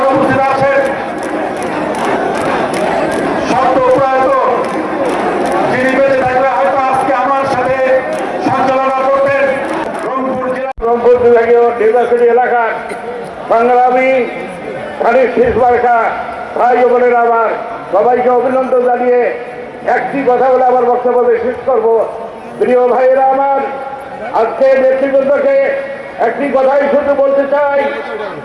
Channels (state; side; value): identical; both; correlation 1.00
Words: উপস্থিত আছেন সত্য প্রয়াত, যিনি বেঁচে থাকলে হয়তো আজকে আমার সাথে সঞ্চালনা করতেন। রংপুর জেলা রংপুর বিভাগীয় নির্বাচনী এলাকার সংগ্রামী ধানের শেষ মার্কা ভাই ও বোনেরা, আমার সবাইকে অভিনন্দন জানিয়ে একটি কথা বলে আমার বক্তব্য শেষ করব। প্রিয় ভাইয়েরা আমার, আজকে নেতৃবৃন্দকে একটি কথাই শুধু বলতে চাই,